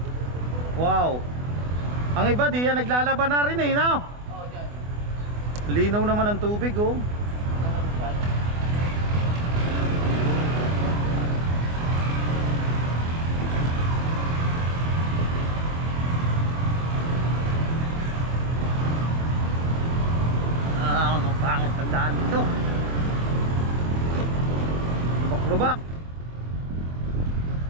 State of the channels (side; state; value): left; late; 24 ms